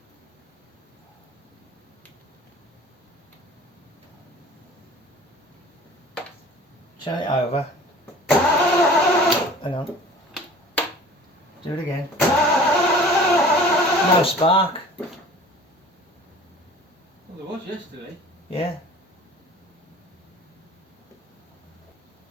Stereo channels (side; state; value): both; normal; correlation 0.45